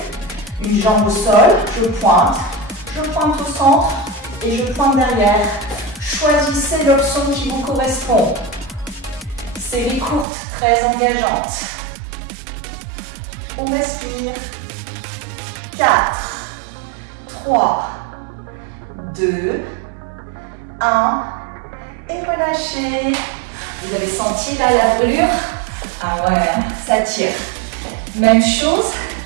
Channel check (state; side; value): drops out; left; at 10.2 s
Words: une jambe au sol, je pointe au centre et je pointe derrière. Choisissez l'option qui vous correspond. Série courte, très engageante. On respire. 4, 3, 2, 1. Et relâchez. Vous avez senti là la brûlure? Ah ouais, ça tire. Même chose